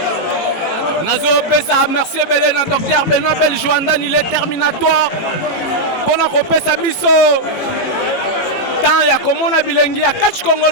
Nazo Pesa, merci Belena, docteur Benoît Beljoandan, il est terminatoire. Pendant qu'on pesa biso. Tant ya komona bilengi ya catch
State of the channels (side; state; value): right; late; 18 ms